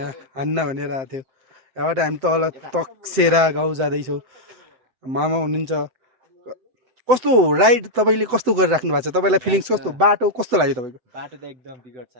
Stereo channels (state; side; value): late; left; 7.9 ms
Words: हान्न भनेर आएको थियो। यहाँबाट हामी तल तकसेरा गाउँ जाँदैछौँ। मामा हुनुहुन्छ। कस्तो राइड तपाईँले कस्तो गरिराख्नु भएको छ? तपाईँलाई फिलिङ्स कस्तो? बाटो कस्तो लाग्यो तपाईँको? बाटो त एकदम बिगड